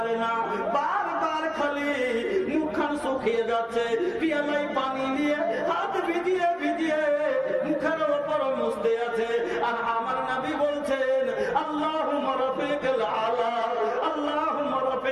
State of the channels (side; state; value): both; identical; correlation 1.00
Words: না, বারবার খালি মুখখান শুকিয়ে যাচ্ছে, পিয়ালায় পানি নিয়ে হাত ভিজিয়ে ভিজিয়ে মুখের ওপর মুছতে আছে। আর আমার নবী বলছেন, আল্লাহুম্মা রাফিকাল আলা, আল্লাহুম্মা